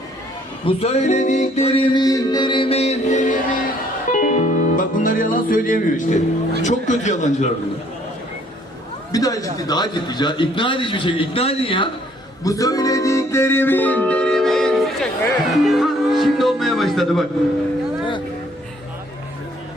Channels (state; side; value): normal; both; correlation 0.62